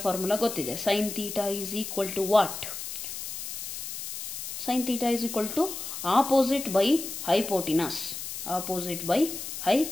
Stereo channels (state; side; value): noise; left; hiss, 8 dB below the sound